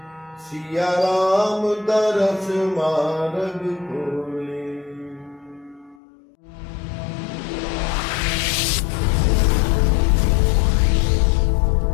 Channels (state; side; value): drops out; right; at 6.0 s